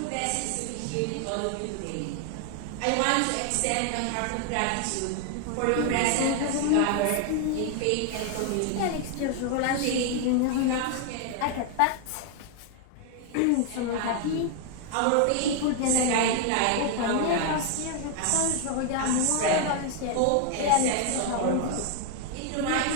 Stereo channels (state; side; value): different; both; correlation 0.00